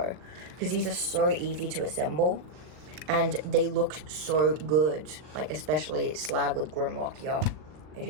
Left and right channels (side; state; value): left; late; 39 ms